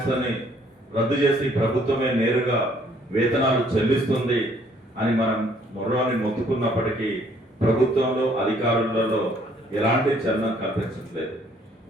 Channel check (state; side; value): normal; both; correlation 0.63